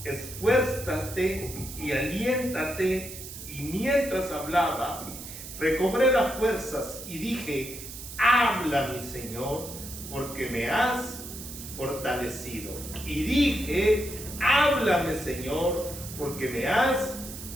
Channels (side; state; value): right; noise; hiss, 11 dB below the sound